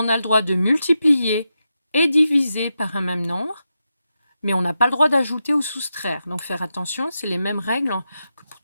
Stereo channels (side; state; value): both; inverted; correlation -0.88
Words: a le droit de multiplier et diviser par un même nombre, mais on n'a pas le droit d'ajouter ou soustraire. Donc, faire attention, c'est les mêmes règles que pour